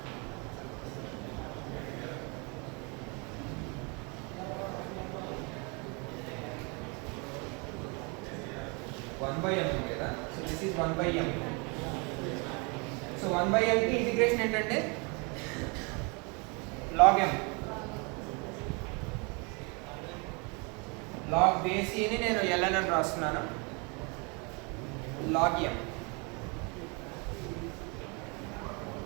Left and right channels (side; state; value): left; quieter; 31.4 dB